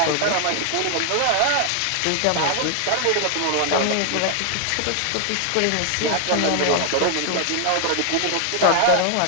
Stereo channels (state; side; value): different; both; correlation 0.00